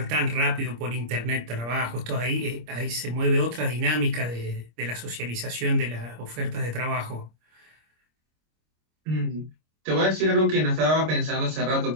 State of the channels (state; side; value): late; left; 26 ms